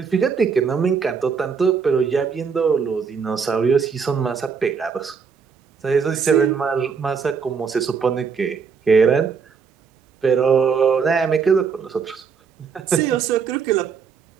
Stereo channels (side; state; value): left; quieter; 5.9 dB